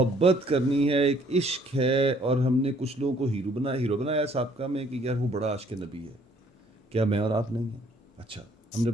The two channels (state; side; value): normal; both; correlation 0.62